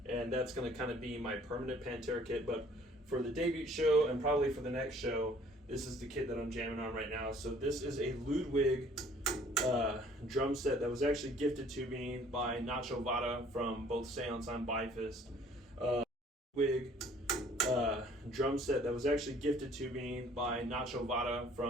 and that's going to kind of be my permanent Pantera kit. But for the debut show and probably for the next show, this is the kit that I'm jamming on right now. So this is a Ludwig drum set that was actually gifted to me by Nacho Vada from both Seance and Bifist. Drum set that was actually gifted to me by Nacho Vada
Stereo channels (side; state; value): both; normal; correlation 0.56